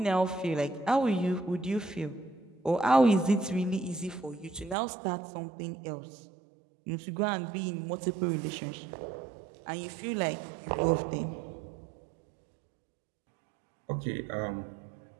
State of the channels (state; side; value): drops out; left; at 4.8 s